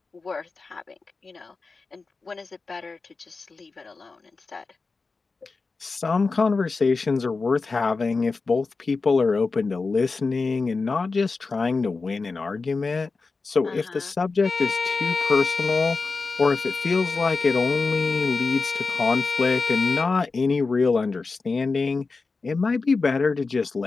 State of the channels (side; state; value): right; quieter; 4.1 dB